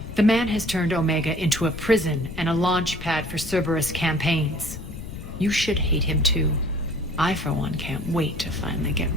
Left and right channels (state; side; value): noise; left; rumble, 11 dB below the sound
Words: The man has turned Omega into a prison and a launch pad for Cerberus campaigns. You should hate him too. I, for one, can't wait to finally get